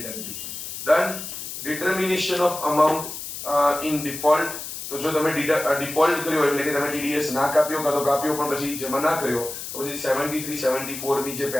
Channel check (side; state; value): left; noise; hiss, 8 dB below the sound